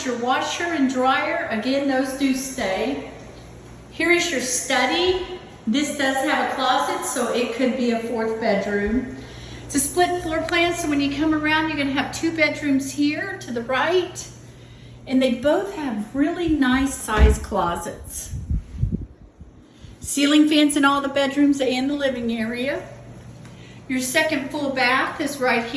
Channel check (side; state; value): both; identical; correlation 1.00